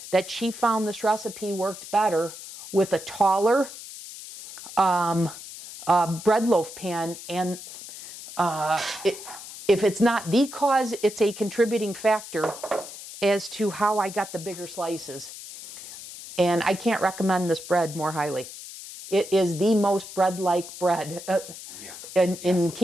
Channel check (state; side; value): noise; left; hiss, 13 dB below the sound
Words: that she found this recipe worked better with a taller bread loaf pan. And if it's not the cause, it's a contributing factor as to how I got the bigger slices. And I can't recommend this bread more highly. It is the most bread-like bread in